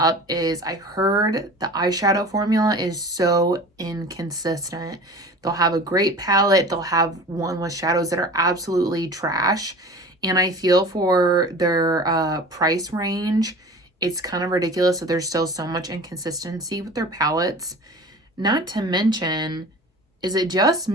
is I heard the eyeshadow formula is so inconsistent. They'll have a great palette. They'll have one with shadows that are absolutely trash. And I feel for their price range, it's kind of ridiculous that there's still so much inconsistency with their palettes. Not to mention, is it just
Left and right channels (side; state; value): both; normal; correlation 0.39